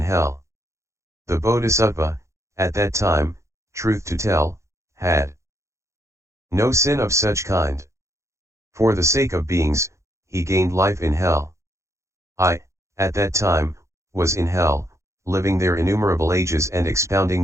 hell. The Bodhisattva, at that time, truth to tell, had no sin of such kind. For the sake of beings, he gained life in hell. I, at that time, was in hell, living there innumerable ages and expounding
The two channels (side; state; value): left; late; 0.14 ms